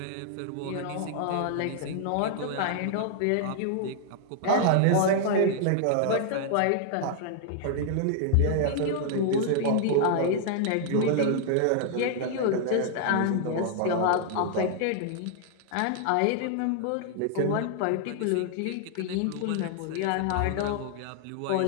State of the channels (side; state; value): both; different; correlation 0.00